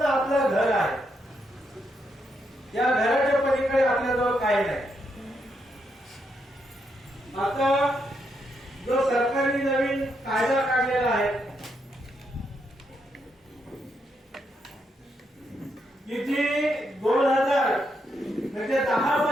आपलं घर आहे. या घराच्या पलीकडे आपल्याजवळ काही नाही. आता जो सरकारने नवीन कायदा काढलेला आहे की जी 2000 म्हणजे 10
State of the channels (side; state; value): both; normal; correlation 0.80